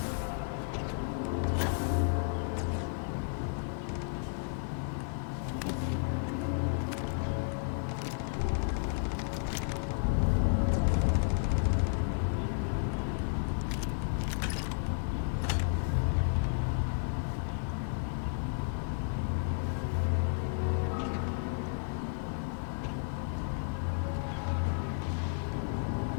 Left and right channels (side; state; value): right; silent; digital silence